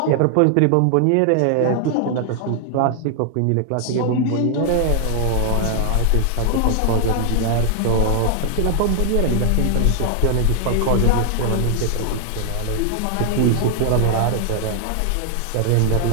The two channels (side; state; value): both; different; correlation 0.00